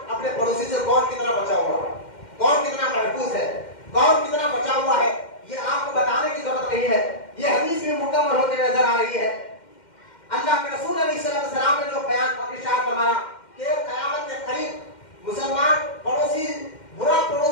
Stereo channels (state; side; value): late; right; 2.1 ms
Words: اپنے پڑوسی سے کون کتنا بچا ہوا ہے، کون کتنا محفوظ ہے، کون کتنا بچا ہوا ہے، یہ آپ کو بتانے کی ضرورت نہیں ہے، یہ حدیث بھی مکمل ہوتے نظر آ رہی ہے۔ اللہ کے رسول علیہ السلام نے جو بیان ارشاد فرمایا کہ قیامت کے قریب مسلمان پڑوسی برا